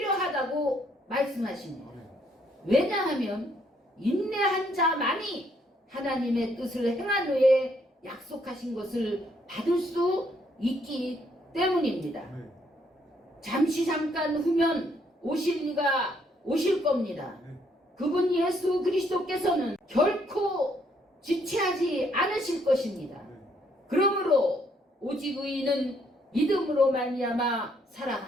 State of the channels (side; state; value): both; normal; correlation 0.70